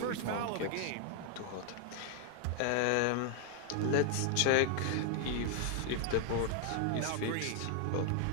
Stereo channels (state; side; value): different; both; correlation 0.00